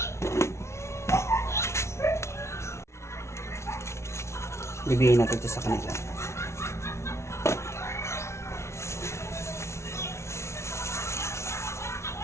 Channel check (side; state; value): right; late; 0.13 ms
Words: Bibigyan natin ito sa kanila.